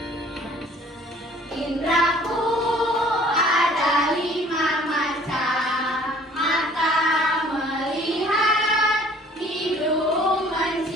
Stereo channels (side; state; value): both; normal; correlation 0.53